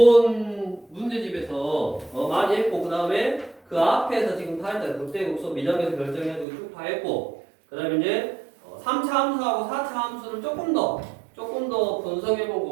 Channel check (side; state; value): left; drops out; at 6.5 s